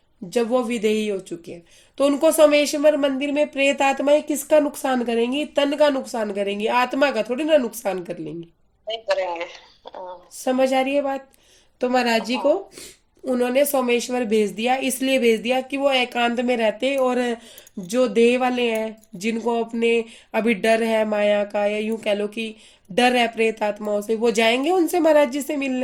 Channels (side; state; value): both; identical; correlation 1.00